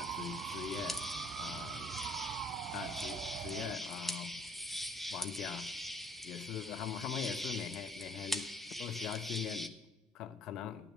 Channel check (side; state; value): both; normal; correlation 0.61